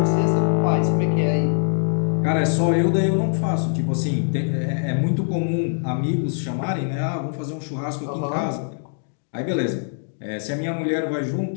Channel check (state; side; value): silent; right; digital silence